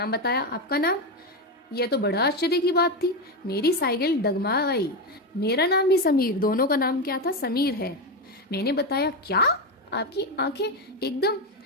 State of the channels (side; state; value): both; normal; correlation 0.12